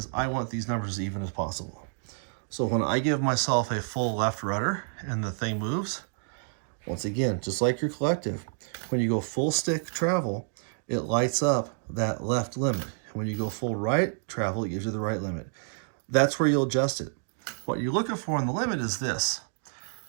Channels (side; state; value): left; silent; digital silence